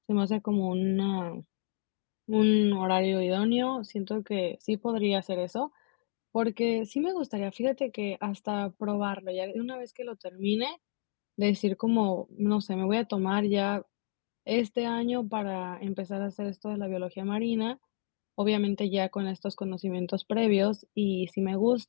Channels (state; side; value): silent; right; digital silence